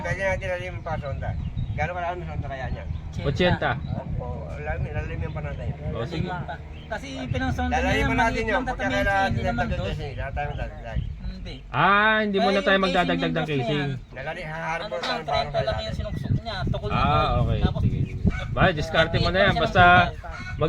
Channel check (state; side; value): identical; both; correlation 1.00